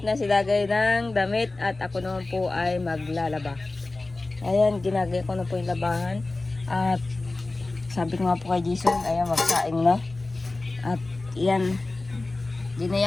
na si Dagay ng damit at ako naman po ay maglalaba. Ayan, ginagaya ko na po yung labahan. At sabi ko nga po kay Jason, ayan, magsaing na. At yan,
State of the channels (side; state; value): right; quieter; 3.1 dB